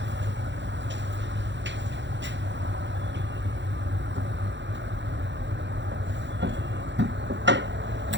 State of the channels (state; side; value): late; left; 0.52 ms